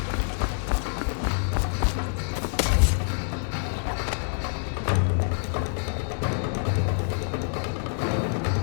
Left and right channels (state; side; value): silent; right; digital silence